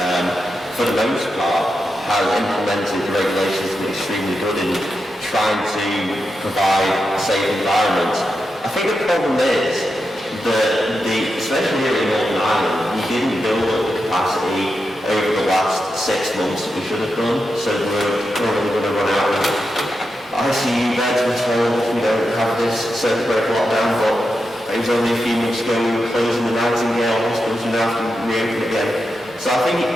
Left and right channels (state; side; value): normal; both; correlation 0.88